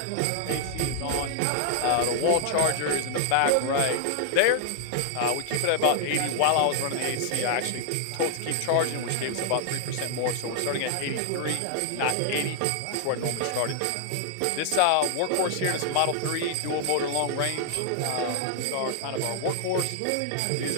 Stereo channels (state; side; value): different; both; correlation 0.00